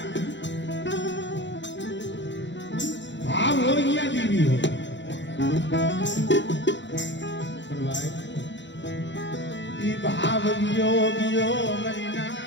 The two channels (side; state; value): right; late; 0.53 ms